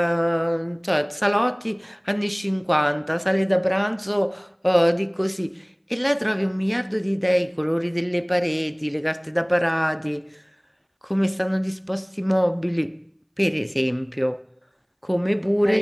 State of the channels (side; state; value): both; identical; correlation 1.00